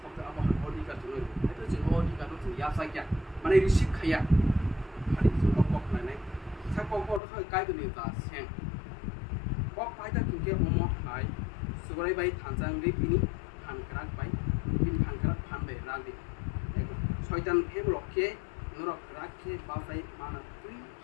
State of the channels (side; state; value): right; drops out; at 7.2 s